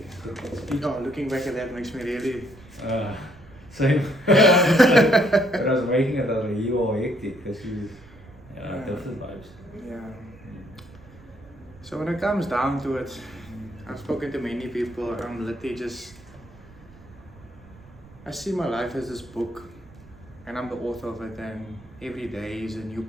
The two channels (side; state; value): right; noise; rumble, 22 dB below the sound